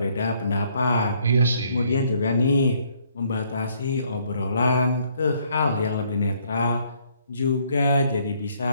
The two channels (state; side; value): inverted; both; correlation -0.67